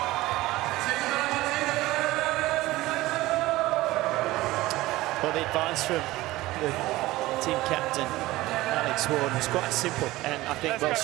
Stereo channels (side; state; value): left; quieter; 18.1 dB